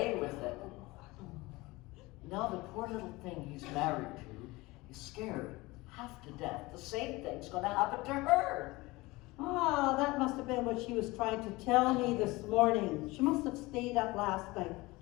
with it. Now the poor little thing he's married to is scared half to death. The same thing's going to happen to her. Ah, that must have been what she was trying to tell me this morning. She must have stayed up last night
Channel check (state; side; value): quieter; right; 21.6 dB